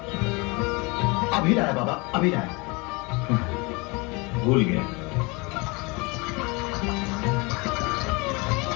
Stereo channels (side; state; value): right; quieter; 27.2 dB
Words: अभी लाया बाबा, अभी लाया। भूल गया।